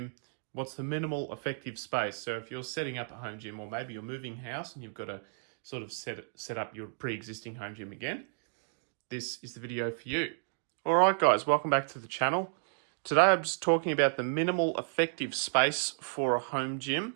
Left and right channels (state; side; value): silent; left; digital silence